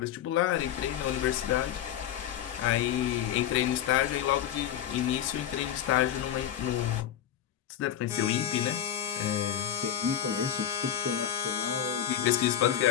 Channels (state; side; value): quieter; right; 10.4 dB